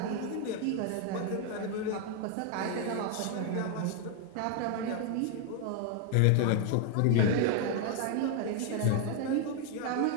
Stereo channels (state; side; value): different; both; correlation 0.00